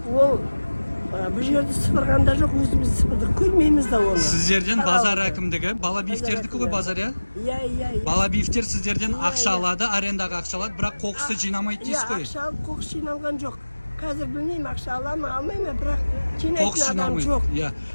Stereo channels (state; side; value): inverted; both; correlation -1.00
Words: Ол бұл жерді сыпырғанда жоқ, өзіміз сыпырдық, көрмейміз да оны. Сіздерден базар әкімдігі, Балабиевтердікі ғой базар, иә? Иә. Балабиевтер сіздерден ақша алады, арендаға ақша алады, бірақ қоқысты жинамайды дейсіз ғой? Ақша алып, қоқыс жиналған жоқ. Қазір білмеймін, ақша ала ма, алмай ма, бірақ жинайтын адам жоқ.